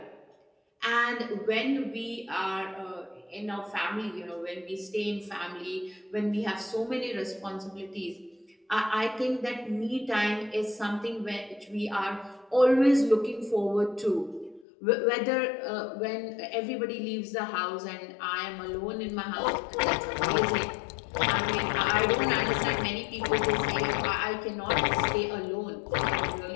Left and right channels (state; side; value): drops out; right; at 14.7 s